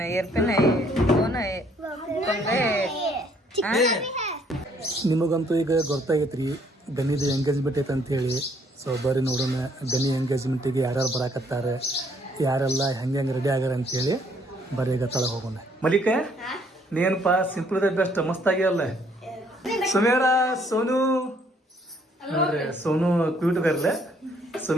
ಐ, ಏರ್ಪಿನ್ ಐ, ಫೋನ್ ಐ, ನಿಮಗಂತೂ ಈಗ ಗೊತ್ತಾಗೈತ್ರಿ ಗನಿದು ಎಂಗೇಜ್ಮೆಂಟ್ ಐತೆ ಅಂತೇಳಿ. ಸೊ ಬರ್ರಿ ನೋಡೋಣ ಗನಿ ಎಂಗೇಜ್ಮೆಂಟಿಗೆ ಯಾರ್ಯಾರು ಬರಾಕತ್ತಾರೆ, ಯಾರೆಲ್ಲ ಹೆಂಗೆ ರೆಡಿ ಆಗ್ಯಾರ ಅಂತೇಳಿ. ಬರ್ರಿ ಈಗ ತಳ ಹೋಗೋಣ. ಮಲಿಕ ನೇನಪ್ಪ ಸಿಂಪಲ್ ಇದೆ ಬೆಸ್ಟ್, ಮಸ್ತ್ ಆಗ್ಯಾವಲ್ಲ. ಸುಮೇರ, ಸೋನು ನೋಡ್ರಿ, ಸೋನು ಕ್ಯೂಟ್ ಗರ್ಲ,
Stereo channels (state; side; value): normal; both; correlation 0.65